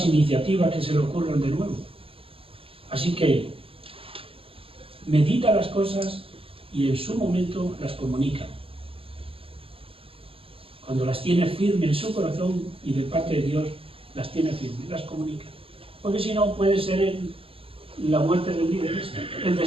iniciativas que se le ocurran de nuevo. Así que medita las cosas y en su momento las comunica. Cuando las tiene firmes en su corazón y de parte de Dios las tiene firmes, las comunica. Porque si no puede ser la muerte del líder, el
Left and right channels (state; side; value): late; left; 0.27 ms